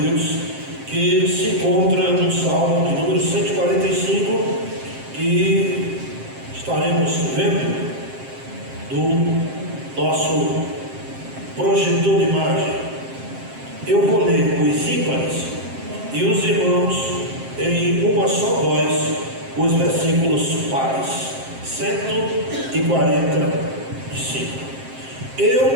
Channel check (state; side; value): late; left; 7.6 ms